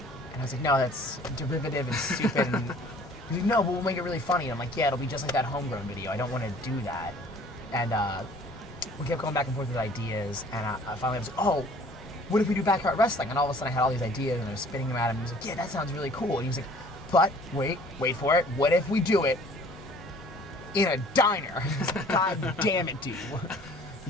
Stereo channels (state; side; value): normal; both; correlation 0.52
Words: And I was like, "No, that's derivative and stupid." And he's like, "No, but we'll make it really funny." And I'm like, "Yeah, it'll be just like that Homegrown video. I don't want to do that." And we kept going back and forth with ideas, and I finally was like, "Oh, what if we do backyard wrestling?" And all of a sudden I had all these ideas, and I was spinning them at him. He was like, "Yeah, that sounds really cool." And he was like, "But wait for it. What if we do it in a diner?" I was like, "God damn it, dude.